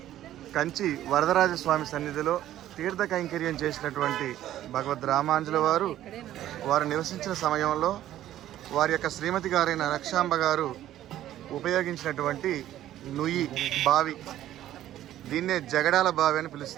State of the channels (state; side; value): quieter; left; 12.8 dB